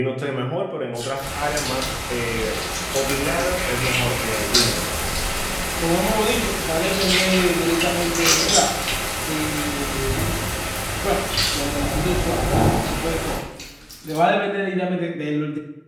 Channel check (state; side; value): identical; both; correlation 1.00